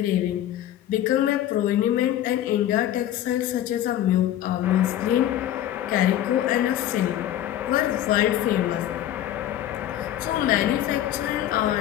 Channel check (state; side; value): quieter; right; 12.2 dB